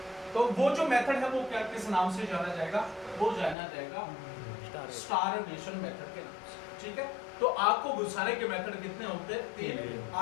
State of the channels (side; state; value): right; drops out; at 3.6 s